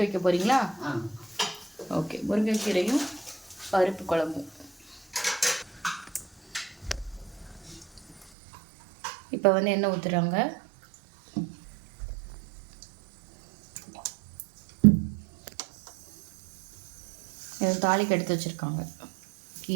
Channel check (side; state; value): left; drops out; at 8.2 s